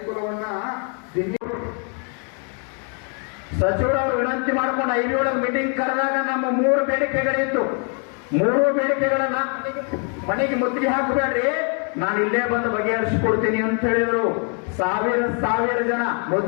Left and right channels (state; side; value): quieter; right; 39.6 dB